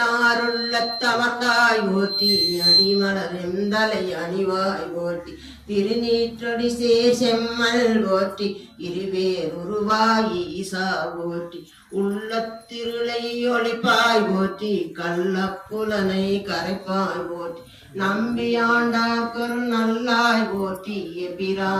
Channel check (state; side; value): identical; both; correlation 1.00